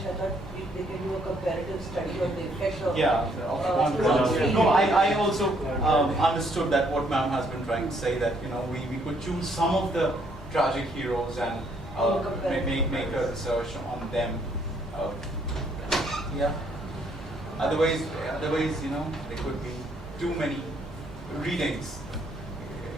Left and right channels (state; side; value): normal; both; correlation 0.68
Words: thought they can do a comparative study on the effect of No, I also understood that what ma'am has been trying to say, that we could choose some of the tragic heroes and make a research on them. Yeah. Otherwise, there could be too many readings